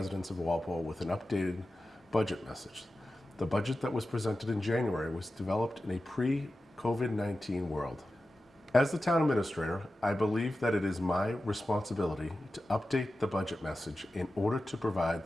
of Walpole with an updated budget message. The budget that was presented in January was developed in a pre-COVID-19 world. As the Town Administrator, I believe that it is my responsibility to update the budget message in order to provide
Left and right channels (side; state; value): both; normal; correlation 0.93